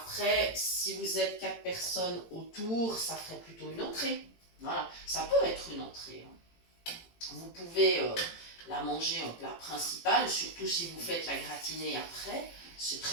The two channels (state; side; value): late; right; 18 ms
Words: si vous êtes 4 personnes autour, ça ferait plutôt une entrée. Voilà, ça peut être une entrée. Hein. Vous pouvez la manger en plat principal, surtout si vous faites la gratinée après. C'est